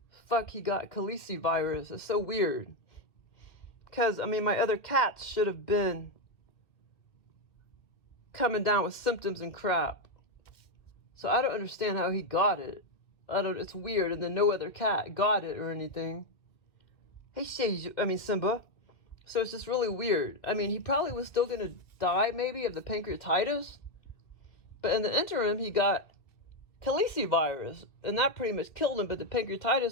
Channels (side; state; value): right; late; 2.2 ms